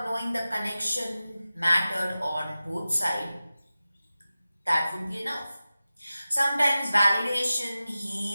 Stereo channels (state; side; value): inverted; both; correlation -0.95